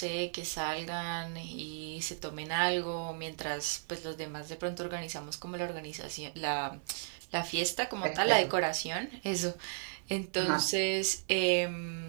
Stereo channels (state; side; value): silent; left; digital silence